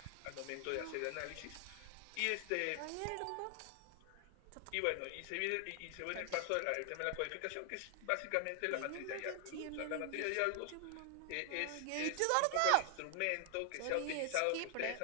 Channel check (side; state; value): both; different; correlation 0.00